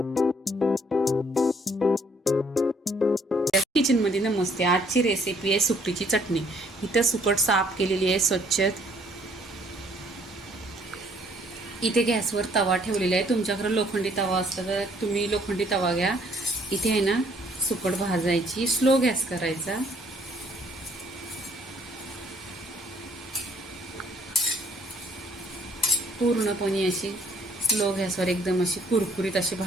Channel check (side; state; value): both; normal; correlation 0.63